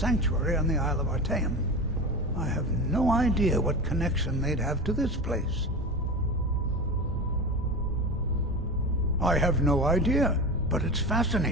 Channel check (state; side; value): normal; both; correlation 0.26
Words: on the Isle of Artaeum. I have no idea what connection they'd have to this place. I have no idea, but it's